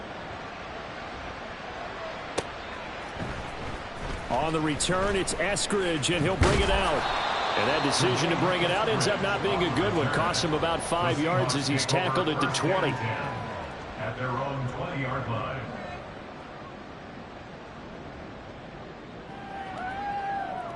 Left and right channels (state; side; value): identical; both; correlation 1.00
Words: On the return, it's Eskridge, and he'll bring it out. And that decision to bring it out ends up not being a good one. Costs him about 5 yards as he's tackled at the 20. At their own 20-yard line.